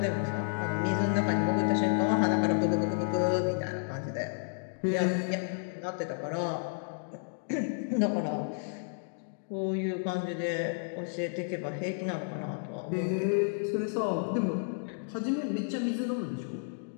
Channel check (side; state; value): right; silent; digital silence